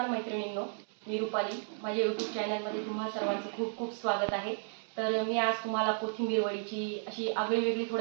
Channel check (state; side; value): silent; left; 56 dB below the other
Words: मैत्रिणींनो, मी रुपाली. माझ्या यूट्यूब चॅनलमध्ये तुम्हा सर्वांचं खूप खूप स्वागत आहे. तर मी आज तुम्हाला कोथिंबीर वडीची अशी आगळीवेगळी